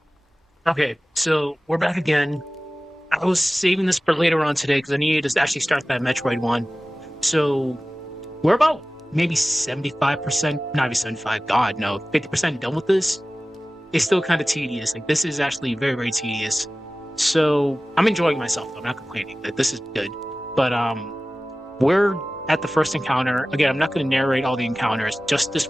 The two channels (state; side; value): normal; both; correlation 0.97